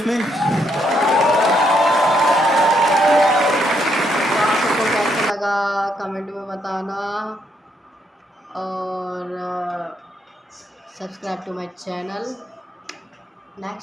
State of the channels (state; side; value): normal; both; correlation 0.74